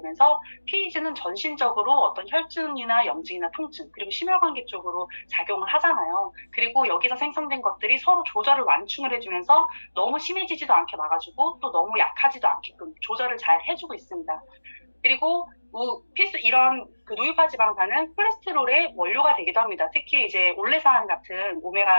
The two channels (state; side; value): inverted; both; correlation -1.00